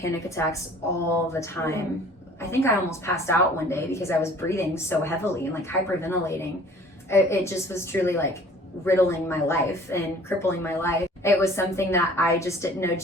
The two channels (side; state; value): both; normal; correlation 0.50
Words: attacks all the time. I think I almost passed out one day because I was breathing so heavily and like hyperventilating. It just was truly like riddling my life and crippling my life. It was something that I just didn't know